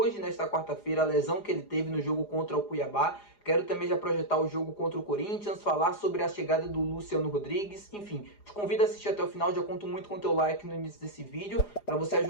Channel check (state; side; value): late; right; 4.9 ms